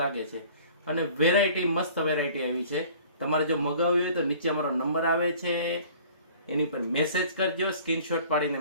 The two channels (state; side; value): inverted; both; correlation -0.49